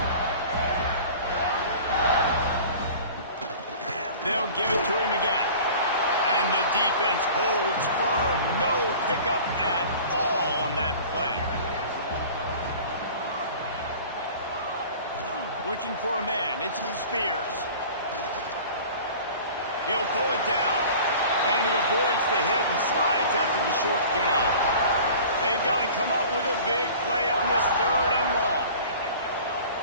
They'll give it to him again. And the defense holds firm. No pickup at all on that play. Looking for a man. It's Spears. He'll pull it down. And he avoids the hit and slides after the short gain. They've got to come up with a big play on this 3rd and long.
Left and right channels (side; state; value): both; inverted; correlation -0.42